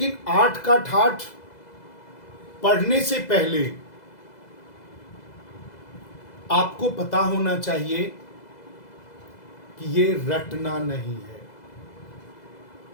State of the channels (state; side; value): late; right; 2.0 ms